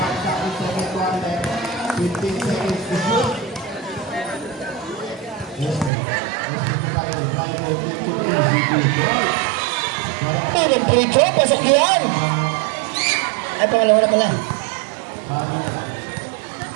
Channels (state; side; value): drops out; left; at 5.9 s